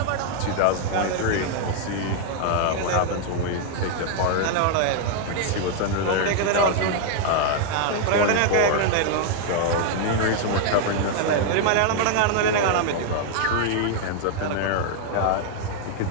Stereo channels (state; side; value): different; both; correlation 0.00